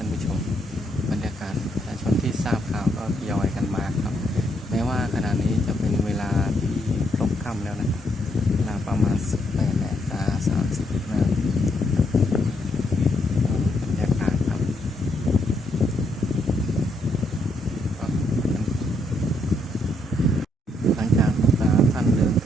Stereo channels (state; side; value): normal; both; correlation 0.75